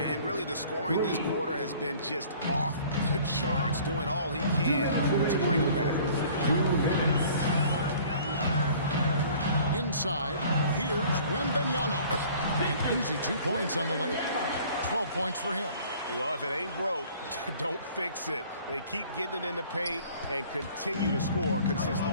really the scoring this quarter has been just off the charts, doing all he can to bring them back. 2 minutes. Inside, here's Wembanyama. An easy 2 points on the layup. 12 points for him. Well, if it ain't broke, don't fix it. They keep getting it in the paint and continue to score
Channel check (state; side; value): inverted; both; correlation -0.51